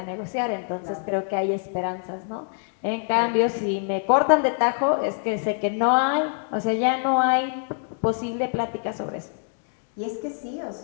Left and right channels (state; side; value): silent; right; digital silence